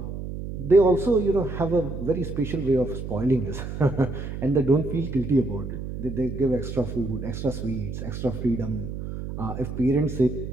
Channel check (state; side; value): noise; right; hum, 7 dB below the sound